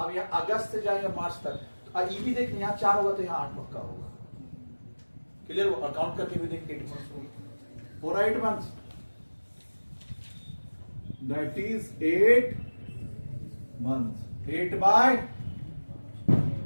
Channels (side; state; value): both; inverted; correlation -1.00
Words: यहाँ अगस्त से जाएंगे मार्च तक, ये भी देख यहाँ 4 होगा तो यहाँ 8 पक्का होगा। क्लियर हो? और काउंट करके भी देख 8 मंथ्स होगा, पूरा 8 मंथ्स, दैट इज 8 मंथ्स।